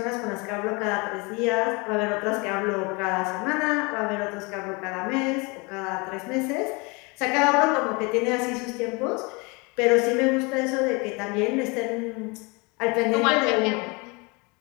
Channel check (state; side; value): quieter; right; 28.4 dB